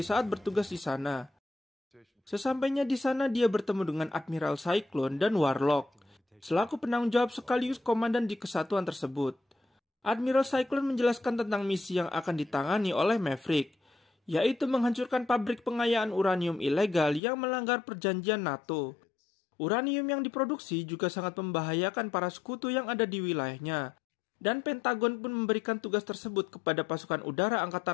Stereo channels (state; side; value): drops out; right; at 17.2 s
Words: saat bertugas di sana. Sesampainya di sana dia bertemu dengan Admiral Cyclone dan Warlock, selaku penanggung jawab sekaligus komandan di kesatuan tersebut. Admiral Cyclone menjelaskan tentang misi yang akan ditangani oleh Maverick, yaitu menghancurkan pabrik pengayaan uranium ilegal yang melanggar perjanjian NATO. Uranium yang diproduksi juga sangat membahayakan para sekutu yang ada di wilayahnya, dan Pentagon pun memberikan tugas tersebut kepada pasukan udara